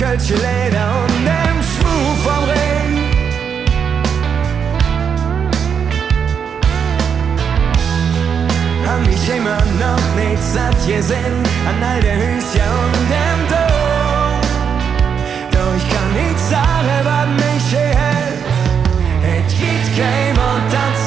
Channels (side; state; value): left; quieter; 7.2 dB